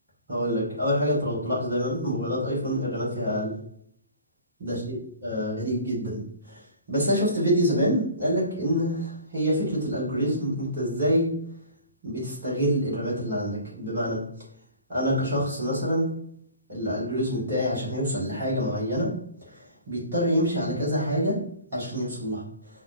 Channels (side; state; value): both; inverted; correlation -0.44